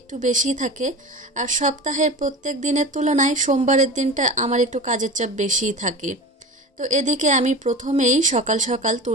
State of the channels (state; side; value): normal; both; correlation 0.32